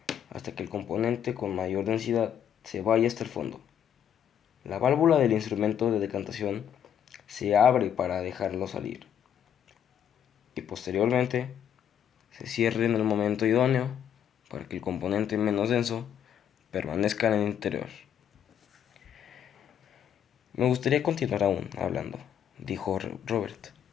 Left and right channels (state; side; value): quieter; right; 9.3 dB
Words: hasta que el componente con mayor densidad se vaya hasta el fondo. La válvula del instrumento de decantación se abre para dejarlo salir y posteriormente se cierre en el momento idóneo para que el componente menos denso permanezca en el interior. Me gustaría continuar aún hablando, dijo Robert,